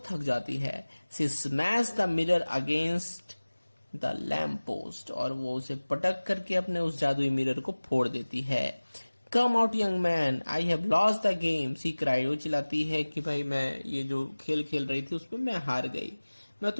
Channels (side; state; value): both; inverted; correlation -1.00